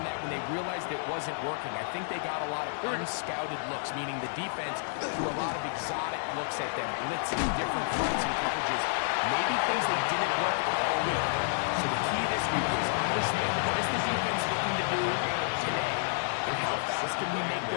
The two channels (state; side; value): silent; right; digital silence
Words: that when they realized it wasn't working? I think they got a lot of unscouted looks, meaning the defense threw a lot of exotic looks at them, blitzing, different fronts and coverages, maybe things they didn't work all week. So the key this week is understand what is the defense looking to do today, and how fast can we make